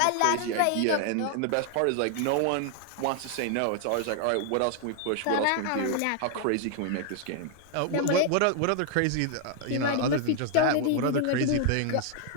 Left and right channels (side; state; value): both; different; correlation 0.00